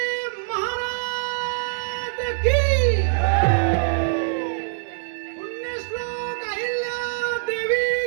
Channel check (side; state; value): left; silent; 62 dB below the other